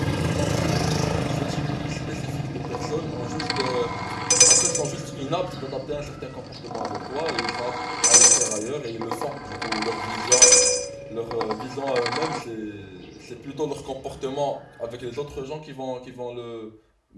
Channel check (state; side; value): identical; both; correlation 1.00